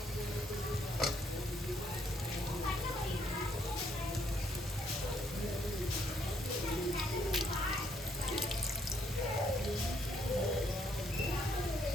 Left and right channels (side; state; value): both; normal; correlation 0.69